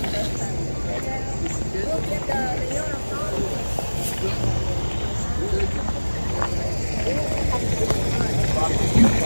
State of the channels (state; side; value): inverted; both; correlation -1.00